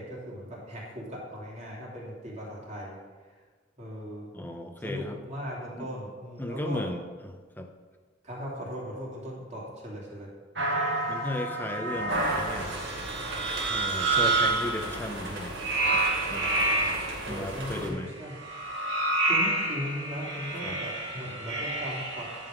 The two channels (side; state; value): both; normal; correlation 0.05